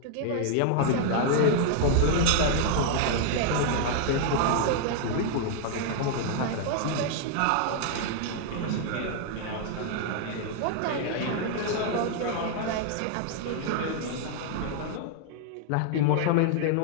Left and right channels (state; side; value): different; both; correlation 0.00